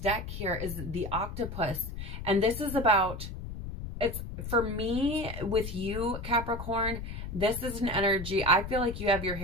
here is the octopus. And this is about, it's for me with you, Capricorn, this is an energy. I feel like you have your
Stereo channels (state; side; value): noise; left; rumble, 7 dB below the sound